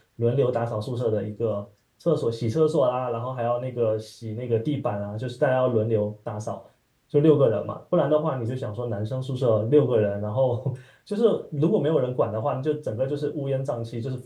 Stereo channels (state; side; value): identical; both; correlation 1.00